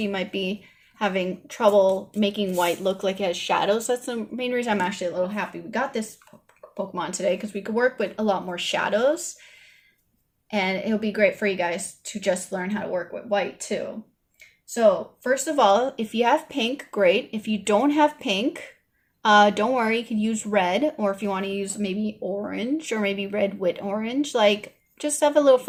might be having trouble making white look like it has shadows. That's the main reason I'm actually a little happy we got this Pokemon today, because we could work with a lot more shadows, and it'll be great for you guys to just learn how to work with white too. So first of all, if you have pink, great. If you don't have pink, don't worry, you can use red, or if you want to use maybe orange or maybe red with orange, like just have a little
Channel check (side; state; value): both; identical; correlation 1.00